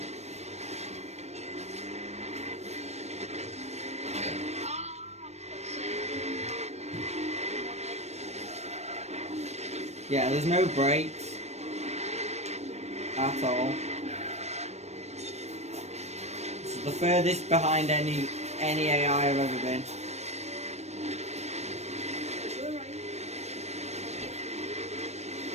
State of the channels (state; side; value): late; left; 0.32 ms